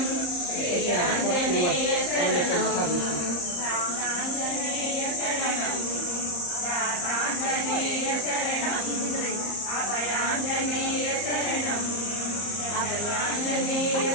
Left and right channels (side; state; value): right; late; 34 ms